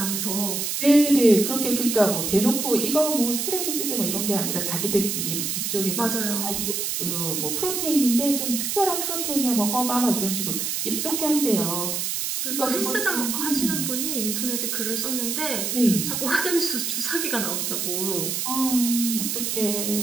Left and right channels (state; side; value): noise; right; hiss, 1 dB below the sound